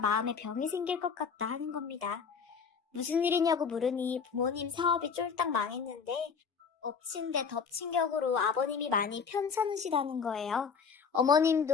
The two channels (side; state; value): right; quieter; 6.0 dB